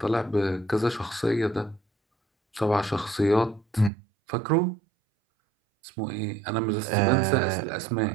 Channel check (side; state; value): left; drops out; at 3.9 s